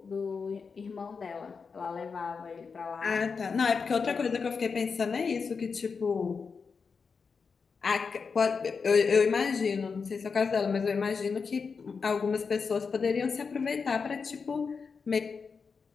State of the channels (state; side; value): quieter; right; 5.3 dB